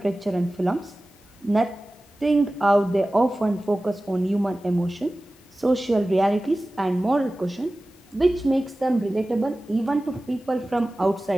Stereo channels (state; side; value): normal; both; correlation 0.96